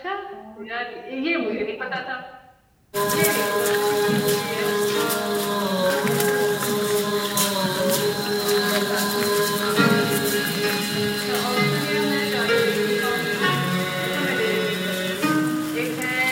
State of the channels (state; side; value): identical; both; correlation 1.00